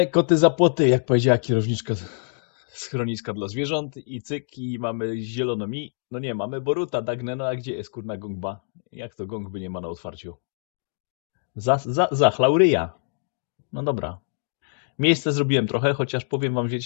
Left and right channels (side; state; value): right; silent; digital silence